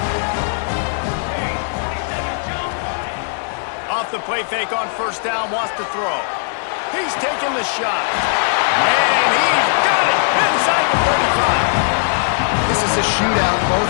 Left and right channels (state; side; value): silent; right; digital silence